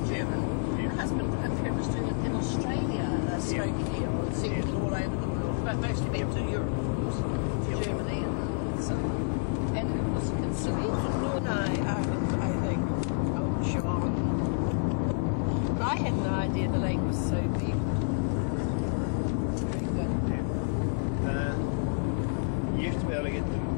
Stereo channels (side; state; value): right; silent; 58 dB below the other